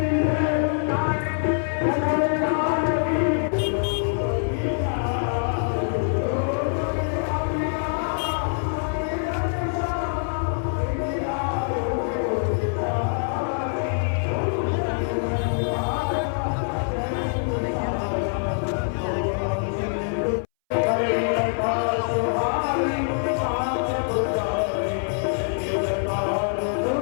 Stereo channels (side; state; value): right; silent; 62 dB below the other